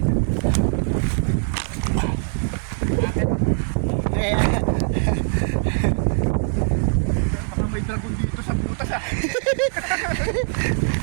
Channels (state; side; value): silent; left; digital silence